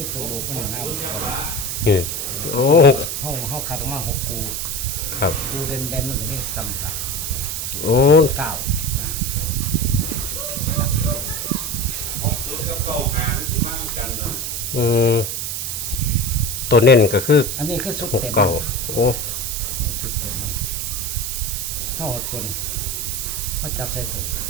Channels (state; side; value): noise; right; hiss, 3 dB below the sound